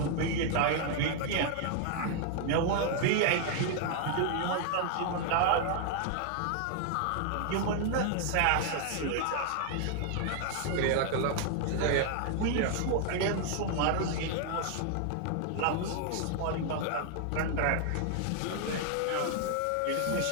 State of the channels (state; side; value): different; both; correlation 0.00